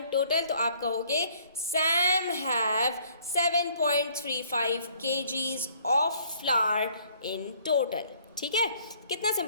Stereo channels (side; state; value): both; inverted; correlation -0.60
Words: total? तो आप कहोगे Sam have 7.35 kgs of flour in total. ठीक है, कितना